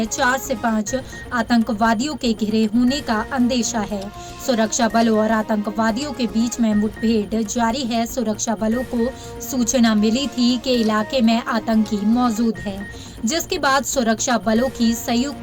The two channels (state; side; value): identical; both; correlation 1.00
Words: 4 से 5 आतंकवादियों के घिरे होने का अंदेशा है। सुरक्षा बलों और आतंकवादियों के बीच में मुठभेड़ जारी है। सुरक्षा बलों को सूचना मिली थी कि इलाके में आतंकी मौजूद है, जिसके बाद सुरक्षा बलों की